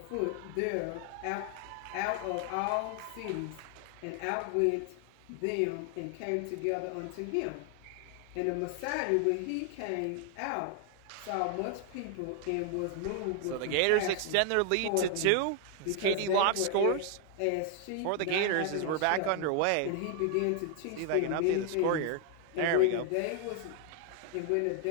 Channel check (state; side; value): different; both; correlation 0.00